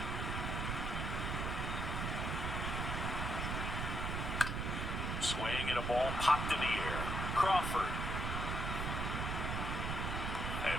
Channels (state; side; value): noise; right; rumble, 1 dB below the sound